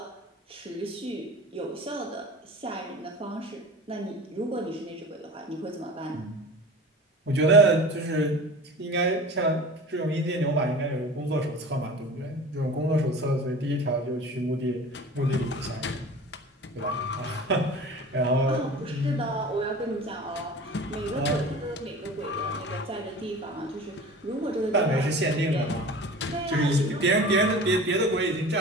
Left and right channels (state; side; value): normal; both; correlation 0.38